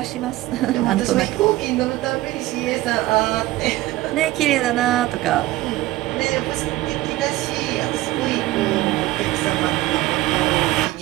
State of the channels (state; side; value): quieter; left; 17.3 dB